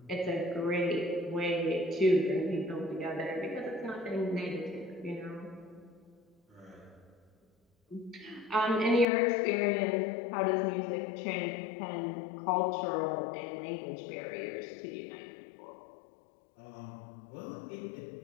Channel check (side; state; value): right; drops out; at 9.1 s